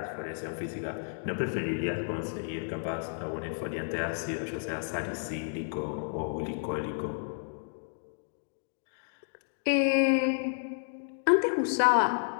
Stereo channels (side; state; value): right; silent; digital silence